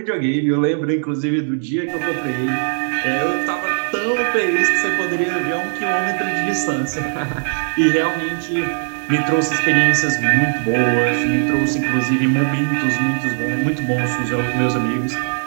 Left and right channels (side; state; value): left; silent; digital silence